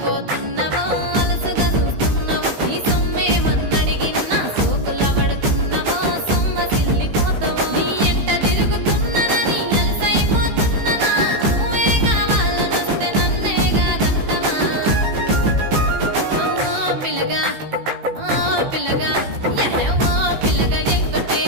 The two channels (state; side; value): late; left; 15 ms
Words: అలసుగా చూస్తున్నవో నీ సొమ్మేమన్నడిగిన్నా సోకుల పడుతున్నవో సొమ్మ సిల్లిపోతావో నీ ఎంట తిరుగుతున్ననని అలసైపోతున్ననా నువ్వే కావాలనొస్తే నన్నే కాదంటవా పిల్లగా పిల్లగా యహ పిల్లగా